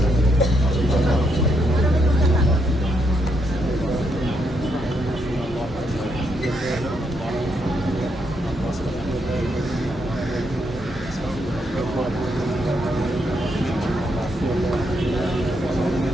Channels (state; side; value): normal; both; correlation 0.77